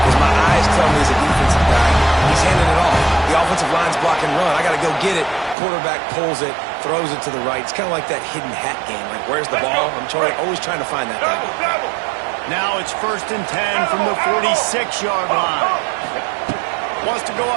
because my eyes tell me he's a defensive guy. He's handing it off. The offensive line's block and run. I got to go get it. Quarterback pulls it, throws it to the right. It's kind of like that hidden hat game. Like, where's the ball? I'm always trying to find that guy. Now it's 1st and 10 from the 46-yard line. Wants to go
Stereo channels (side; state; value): left; drops out; at 5.6 s